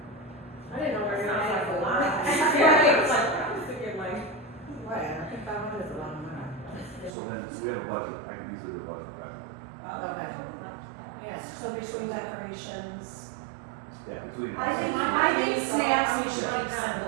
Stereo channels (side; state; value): left; drops out; at 7.2 s